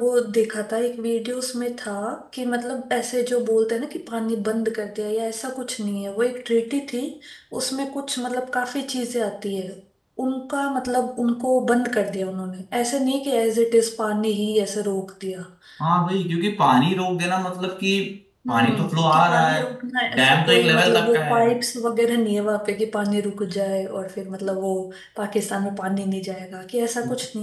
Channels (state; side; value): identical; both; correlation 1.00